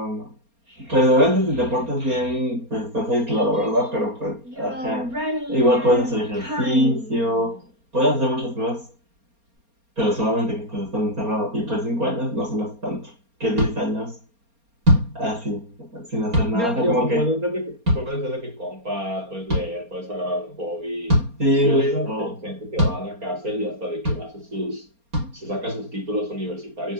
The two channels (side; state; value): left; late; 4.3 ms